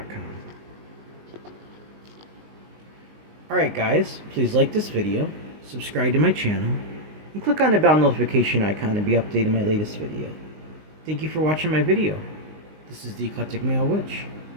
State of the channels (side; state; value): left; late; 19 ms